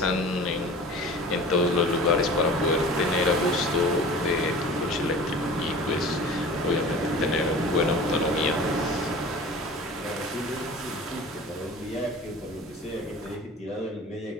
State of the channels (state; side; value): normal; both; correlation 0.40